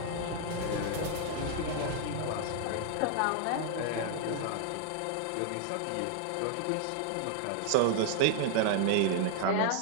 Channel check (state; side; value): different; both; correlation -0.01